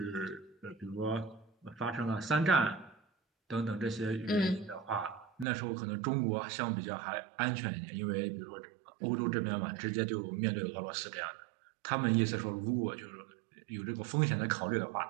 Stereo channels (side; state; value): left; drops out; at 5.5 s